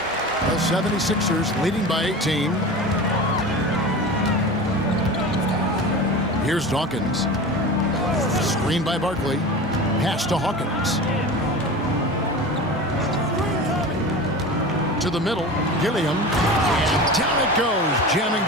The 76ers leading by 18. Here's Dawkins. Screen by Barkley. Pass to Hawkins. To the middle. Gilliam. And down it goes. Jamming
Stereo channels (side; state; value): both; normal; correlation 0.32